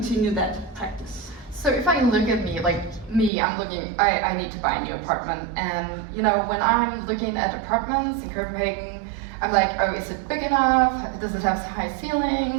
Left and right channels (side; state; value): left; drops out; at 3.3 s